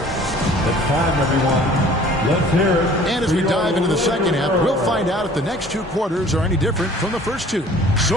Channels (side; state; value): both; normal; correlation 0.51